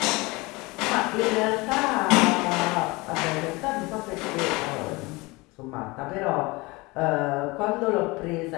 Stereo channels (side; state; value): right; quieter; 24.0 dB